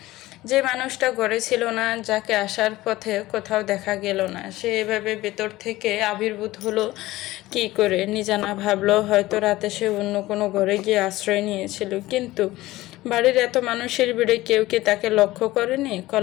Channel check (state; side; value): quieter; right; 17.5 dB